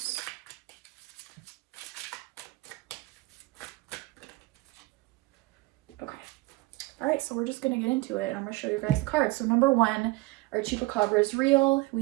Okay. All right, so we're just going to get into it. I'm going to show you guys the cards. So number 1, are Chupacabras real?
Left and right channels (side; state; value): left; quieter; 21.4 dB